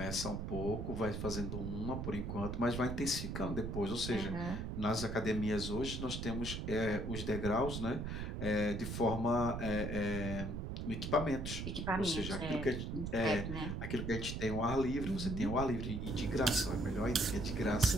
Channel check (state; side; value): noise; right; rumble, 4 dB below the sound